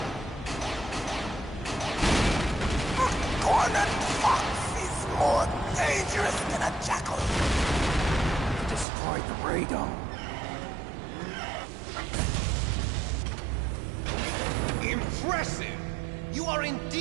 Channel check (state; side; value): drops out; left; at 8.8 s